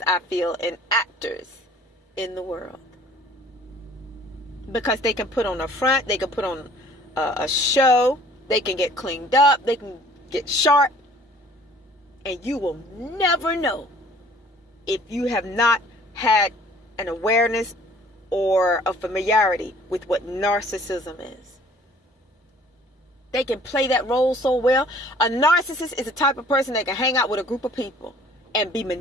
I feel, and actors in the world. Because they can put on a front, they can put on a show, they can get cleaned up, they can get sharp, and you will never know if you have not had an awareness or a familiarity with what narcissism is. They can play that role so well. A narcissist is the type of person that can hang out with a group of people and be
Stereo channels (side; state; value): both; normal; correlation 0.54